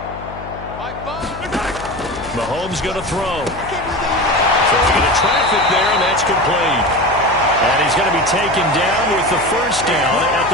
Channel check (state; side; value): noise; left; hum, 14 dB below the sound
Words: Mahomes going to throw. Throwing into traffic there, and that's complete. And he's going to be taken down with the first down at